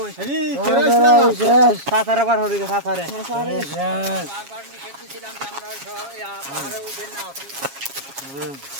আরে কেরে আসলাম। সাঁতারে বার হরি গায়ে, সাঁতারে। বারবার নিষেধ দিছিলাম যে আমরা ওই পাহাড়ে উঠবেন না।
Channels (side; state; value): left; late; 7.3 ms